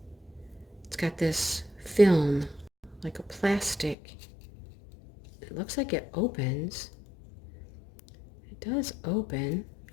It's got this film, like a plastic. It looks like it opens. It does open.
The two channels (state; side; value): drops out; right; at 4.0 s